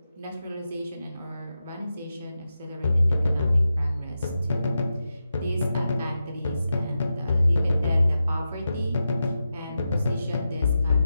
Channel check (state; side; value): inverted; both; correlation -0.90